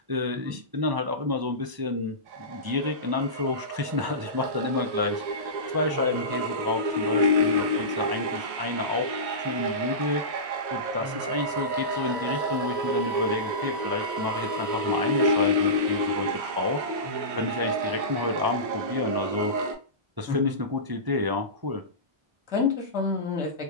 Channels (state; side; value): late; left; 1.0 ms